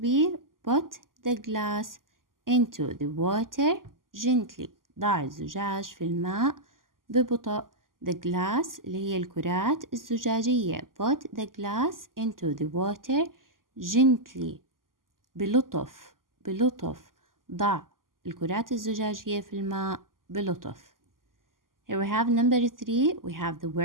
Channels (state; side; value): late; left; 0.91 ms